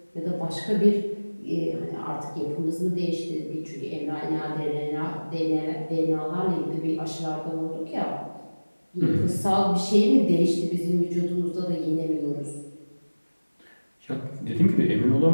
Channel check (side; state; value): both; inverted; correlation -1.00